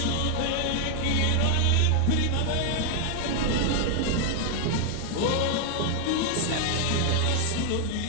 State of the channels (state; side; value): different; both; correlation 0.00